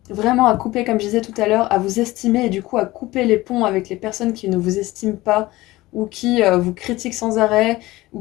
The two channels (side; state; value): right; quieter; 18.7 dB